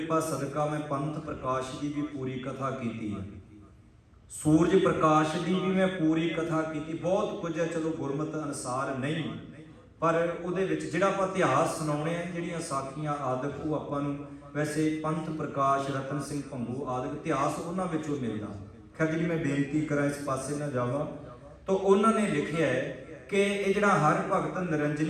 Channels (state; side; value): identical; both; correlation 1.00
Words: ਸਦਕਾ ਮੈਂ ਪੰਥ ਪ੍ਰਕਾਸ਼ ਦੀ ਵੀ ਪੂਰੀ ਕਥਾ ਕੀਤੀ ਹੈ, ਸੂਰਜ ਪ੍ਰਕਾਸ਼ ਦੀ ਵੀ ਮੈਂ ਪੂਰੀ ਕਥਾ ਕੀਤੀ। ਬਹੁਤ ਕੁਝ ਹੈ, ਚਲੋ ਗੁਰਮਤਿ ਅਨੁਸਾਰ ਨਹੀਂ, ਪਰ ਉਹਦੇ ਵਿੱਚ ਜਿਹੜਾ ਆਪਾਂ ਇਤਿਹਾਸ ਸੁਣਾਉਣੇ ਆ, ਜਿਹੜੀਆਂ ਸਾਖੀਆਂ ਆਦਿਕ, ਉਹ ਆਪਾਂ ਨੂੰ ਵੈਸੇ ਪੰਥ ਪ੍ਰਕਾਸ਼, ਰਤਨ ਸਿੰਘ ਭੰਗੂ ਆਦਿਕ ਇਤਿਹਾਸ ਉਹਨਾਂ ਵਿੱਚੋਂ ਮਿਲਦਾ। ਖੈਰ ਜਿਹੜੀ ਮੈਂ ਬੇਨਤੀ ਕਰਾਂ ਇਸ ਪਾਸੇ ਨਾ ਜਾਵਾਂ, ਤਾਂ ਉਹਨਾਂ ਨੇ ਲਿਖਿਆ ਹੈ ਕਿ ਇਹ ਜਿਹੜਾ ਹਰ ਭਗਤ